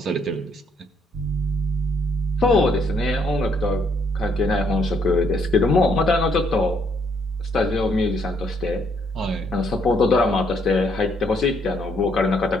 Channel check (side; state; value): both; normal; correlation 0.69